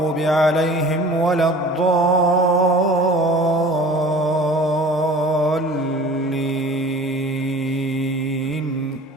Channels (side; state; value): both; normal; correlation 0.44